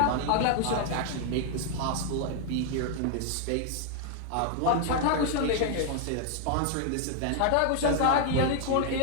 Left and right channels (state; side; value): different; both; correlation 0.00